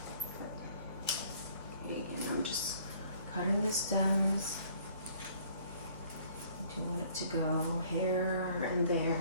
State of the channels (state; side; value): inverted; both; correlation -0.58